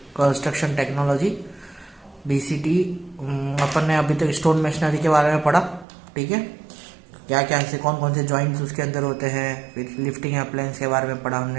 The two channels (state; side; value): drops out; left; at 5.9 s